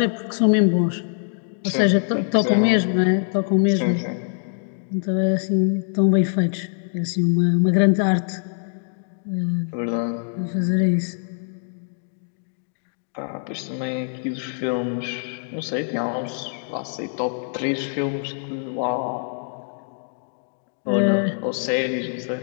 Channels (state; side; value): silent; right; 63 dB below the other